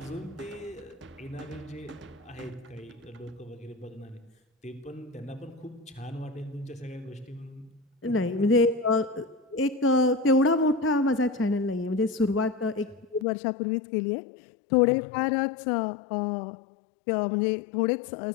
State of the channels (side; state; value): right; drops out; at 13.2 s